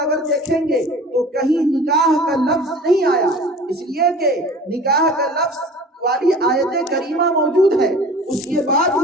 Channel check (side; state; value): both; normal; correlation 0.42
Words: اگر دیکھیں گے تو کہیں نکاح کا لفظ نہیں آیا، اس لیے کہ نکاح کا لفظ والی آیت کریمہ موجود ہے. اس کے بعد